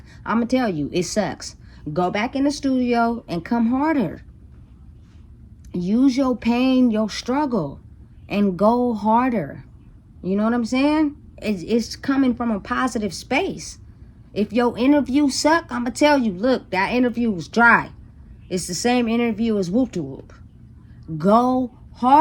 I'm going to tell you, it sucks. Go back in the studio and come harder. Use your pain, your struggle, and go harder. You know what I'm saying? It's coming from a positive space. If your interview suck, I'm going to tell you, look, that interview was dry. It's the same interview as whoop to whoop. Go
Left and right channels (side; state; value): both; identical; correlation 1.00